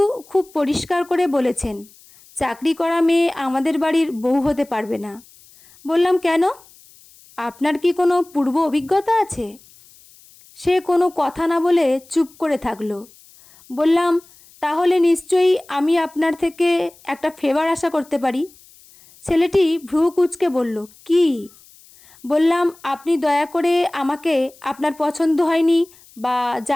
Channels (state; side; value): noise; left; hiss, 26 dB below the sound